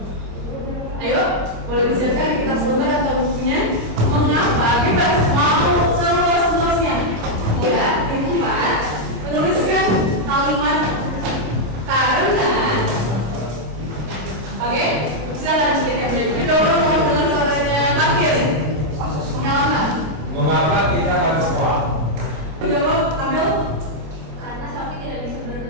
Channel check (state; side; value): late; left; 26 ms